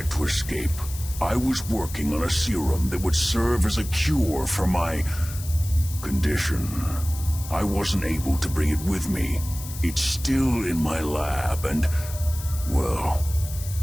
to escape, I was working on a serum that would serve as a cure for my condition. I wasn't able to bring it with me. It's still in my lab and, well,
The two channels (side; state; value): left; noise; hiss, 13 dB below the sound